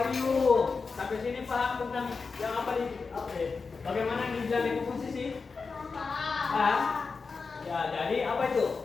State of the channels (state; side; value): quieter; right; 4.7 dB